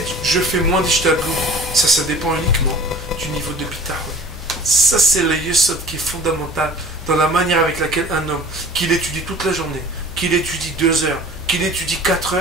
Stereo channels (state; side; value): normal; both; correlation 0.45